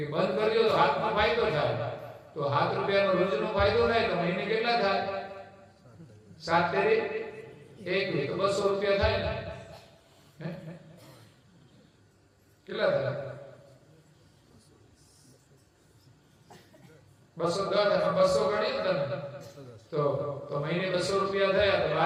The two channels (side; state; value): both; identical; correlation 1.00